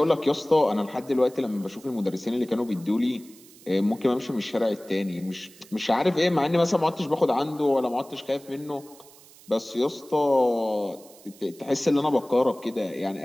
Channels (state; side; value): noise; right; hiss, 23 dB below the sound